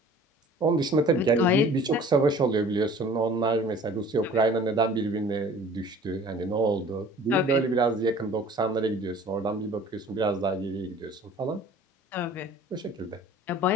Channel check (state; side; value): normal; both; correlation 0.48